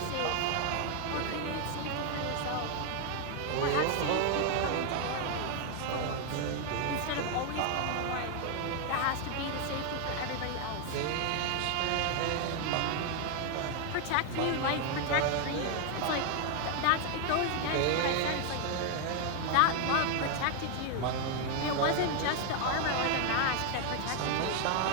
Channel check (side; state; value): both; different; correlation 0.00